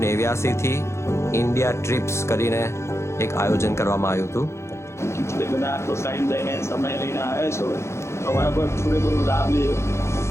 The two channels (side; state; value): right; late; 0.13 ms